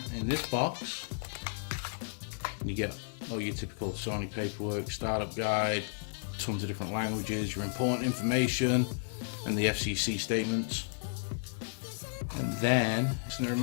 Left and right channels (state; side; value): silent; right; digital silence